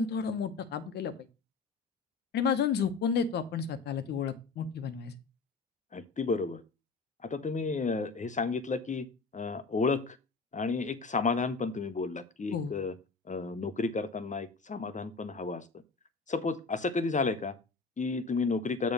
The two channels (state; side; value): quieter; right; 4.4 dB